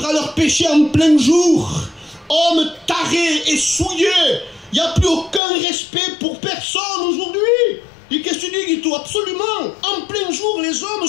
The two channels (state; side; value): drops out; right; at 5.4 s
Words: à leur péché en plein jour. Hommes tarés et souillés. Il n'y a plus aucun respect pour personne aujourd'hui. Et qu'est-ce que tu dis, Guito? Absolument. En plein jour, les hommes